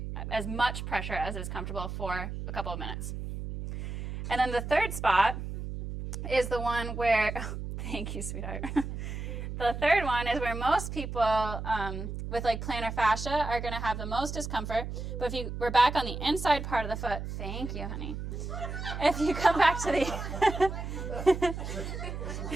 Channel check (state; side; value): noise; right; hum, 6 dB below the sound